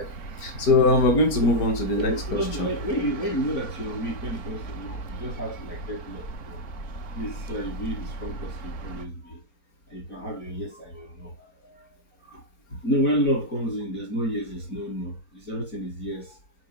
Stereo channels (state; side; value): late; right; 4.4 ms